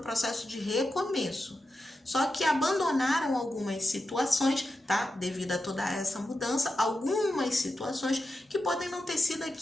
processo de recomeço. Só que abandonaram algumas situações, tá? Devido a toda essa mudança, algumas situações que podem não ter sido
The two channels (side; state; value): both; normal; correlation 0.90